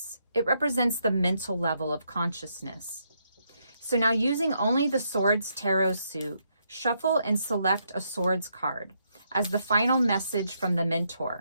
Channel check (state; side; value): inverted; both; correlation -0.77